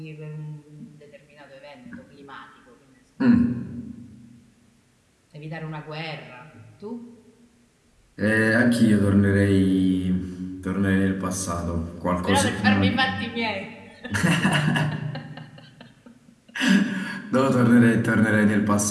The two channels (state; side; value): identical; both; correlation 1.00